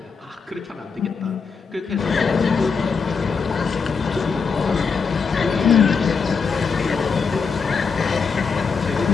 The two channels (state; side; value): quieter; right; 5.4 dB